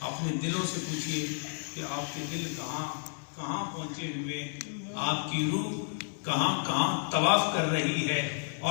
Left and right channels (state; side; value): silent; right; 57 dB below the other